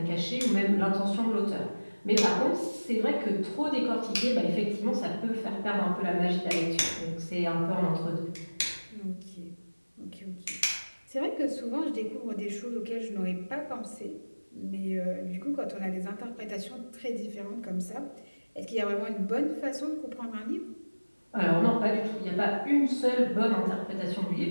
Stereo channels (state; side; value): inverted; both; correlation -1.00